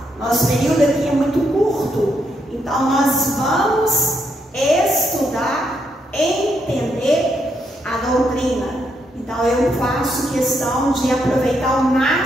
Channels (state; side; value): normal; both; correlation 0.78